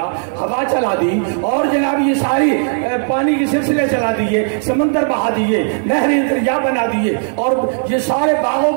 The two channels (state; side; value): silent; left; 62 dB below the other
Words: ہوا چلا دی، اور جناب یہ ساری پانی کے سلسلے چلا دیے، سمندر بہا دیے، نہریں دریا بنا دیے، اور یہ سارے باغ و